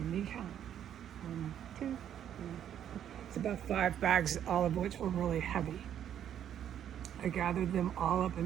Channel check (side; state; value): left; quieter; 9.9 dB